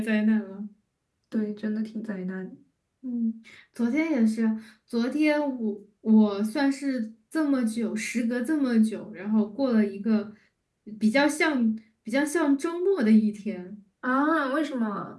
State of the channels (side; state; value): both; identical; correlation 1.00